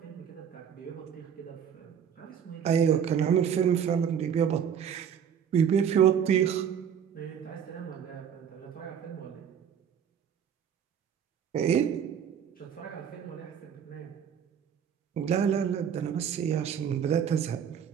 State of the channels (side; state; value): left; quieter; 8.2 dB